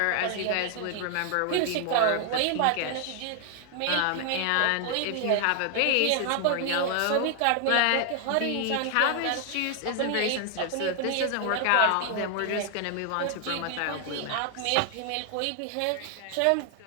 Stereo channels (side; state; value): both; different; correlation 0.00